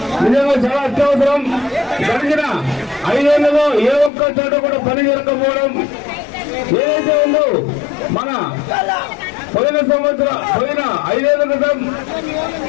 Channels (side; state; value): right; drops out; at 4.1 s